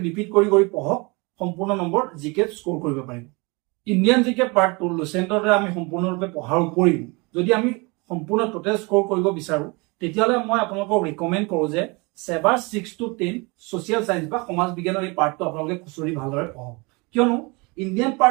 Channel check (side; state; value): left; quieter; 27.7 dB